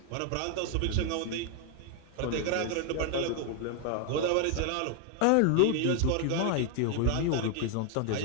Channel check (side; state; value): both; different; correlation 0.00